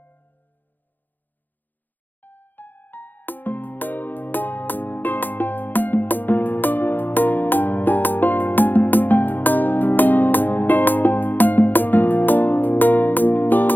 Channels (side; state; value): right; late; 0.088 ms